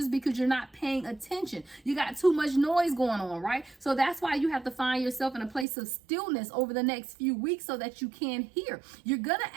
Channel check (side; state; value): left; drops out; at 5.7 s